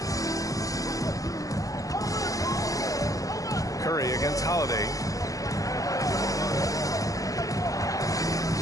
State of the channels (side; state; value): right; late; 0.17 ms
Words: Curry against Holiday.